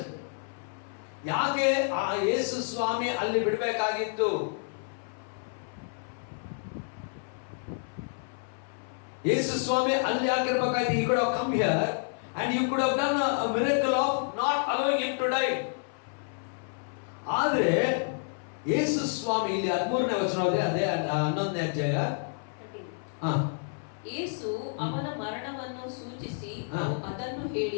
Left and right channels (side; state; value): right; silent; 58 dB below the other